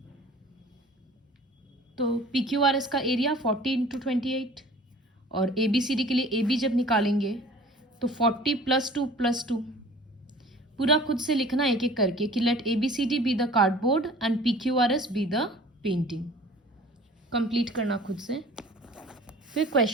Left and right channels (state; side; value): normal; both; correlation 0.46